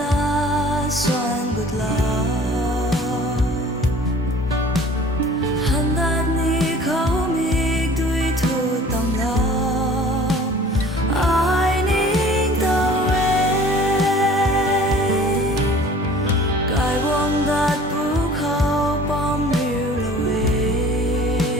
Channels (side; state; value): both; normal; correlation 0.48